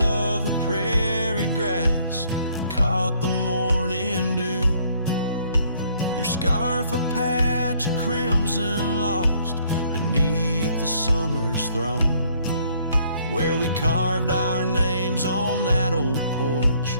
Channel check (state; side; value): inverted; both; correlation -0.65